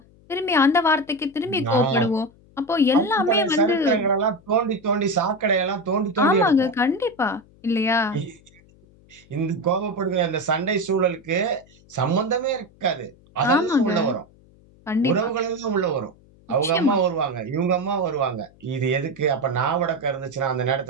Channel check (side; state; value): left; noise; hum, 28 dB below the sound